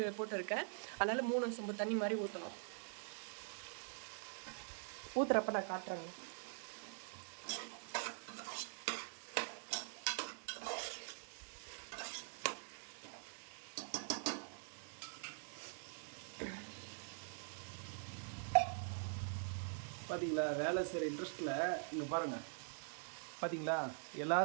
போட்டிருக்கேன், அதனால் 3 சொம்பு தண்ணி மாதிரி ஊற்றணும். ஊற்றுறப்ப நான் காட்டுறேங்க. பார்த்தீங்களா வேலை செய்கிற இன்ட்ரெஸ்ட்டில் இங்கே பாருங்கள் பார்த்தீங்களா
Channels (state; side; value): silent; left; digital silence